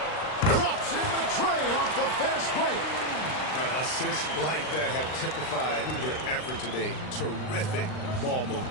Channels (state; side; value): late; right; 39 ms